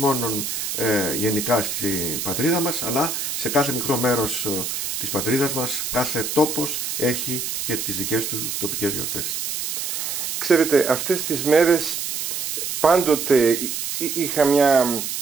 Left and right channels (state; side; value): noise; right; hiss, 3 dB below the sound